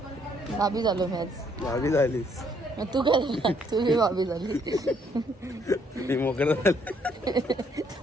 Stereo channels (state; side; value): normal; both; correlation 0.68